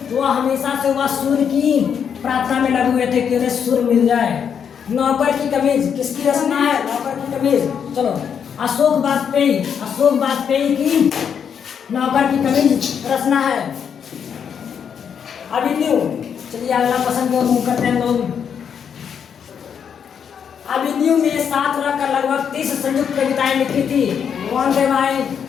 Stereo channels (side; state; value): right; quieter; 7.6 dB